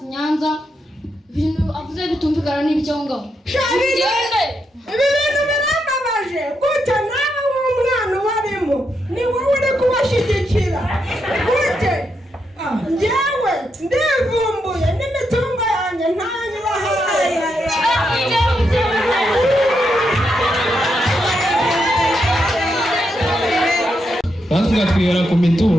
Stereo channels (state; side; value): normal; both; correlation 0.82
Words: Nyanza ibintu avuze bitumvikana n'ibyo ngaho ibi bintu birambabaje gute nawe w'umwana ubarimo ni wowe uri kubashyigikira gute njyewe ndivumbuye n'imitungo yanjye ntanyibahaye. Natwe twihera ku